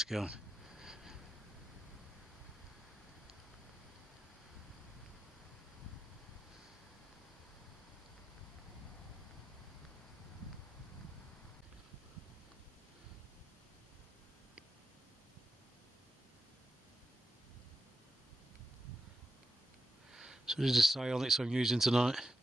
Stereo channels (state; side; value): normal; both; correlation 0.87